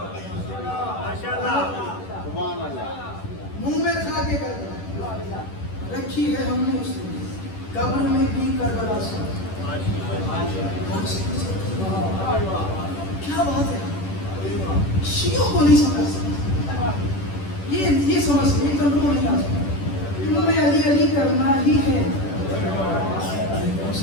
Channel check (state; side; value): late; right; 10 ms